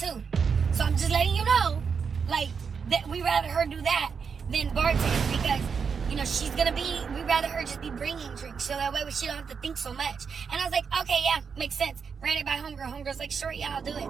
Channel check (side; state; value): left; quieter; 6.1 dB